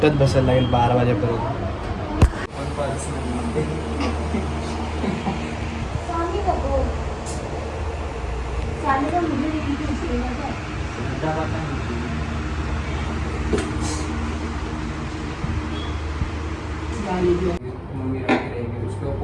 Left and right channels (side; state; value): both; identical; correlation 1.00